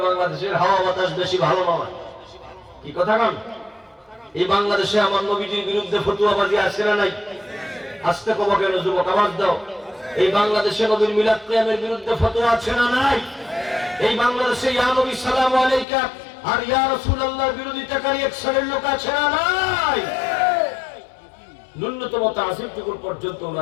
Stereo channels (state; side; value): drops out; right; at 15.9 s